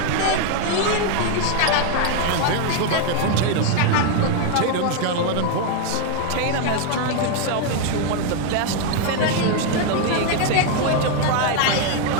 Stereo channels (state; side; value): different; both; correlation 0.01